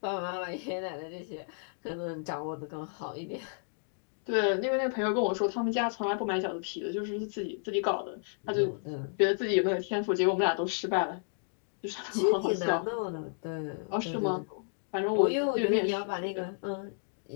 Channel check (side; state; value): right; silent; digital silence